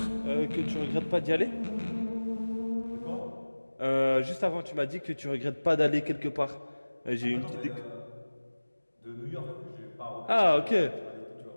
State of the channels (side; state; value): both; inverted; correlation -1.00